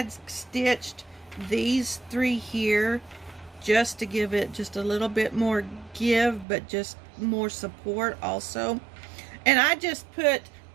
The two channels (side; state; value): left; drops out; at 6.5 s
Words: stitched these 3 here just to give it just a little bit more give, but just more support also. And I just pinned